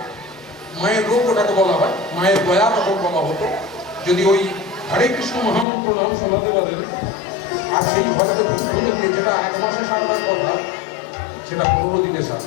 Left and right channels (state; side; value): drops out; right; at 5.7 s